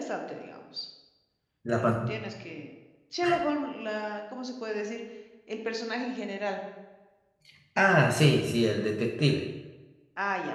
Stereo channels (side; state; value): both; identical; correlation 1.00